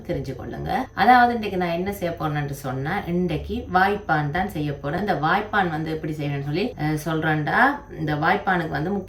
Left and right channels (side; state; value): both; identical; correlation 1.00